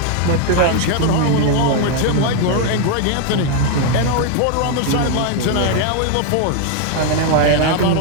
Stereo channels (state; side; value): different; both; correlation 0.01